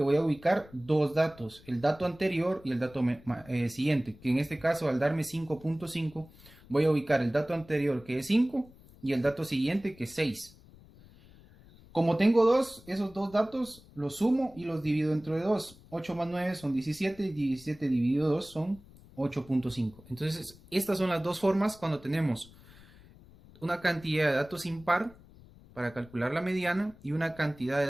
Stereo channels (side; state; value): left; noise; rumble, 23 dB below the sound